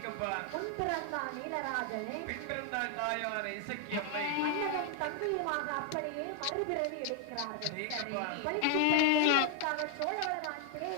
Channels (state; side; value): different; both; correlation 0.00